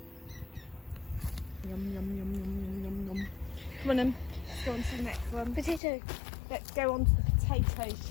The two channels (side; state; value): right; drops out; at 5.8 s